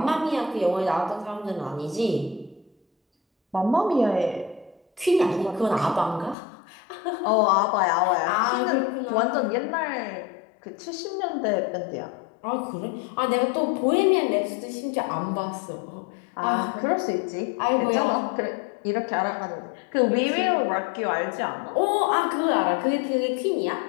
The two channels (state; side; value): drops out; right; at 6.4 s